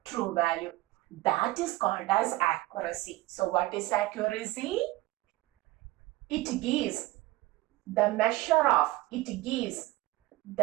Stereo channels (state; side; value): quieter; left; 18.6 dB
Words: true value. That is called as accuracy. So what is accuracy? It gives the measure of,